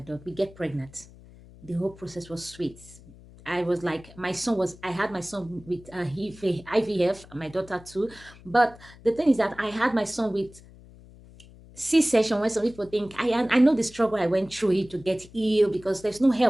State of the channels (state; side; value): noise; left; hum, 21 dB below the sound